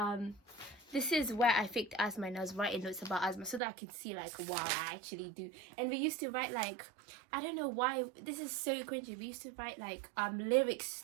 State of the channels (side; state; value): left; drops out; at 3.6 s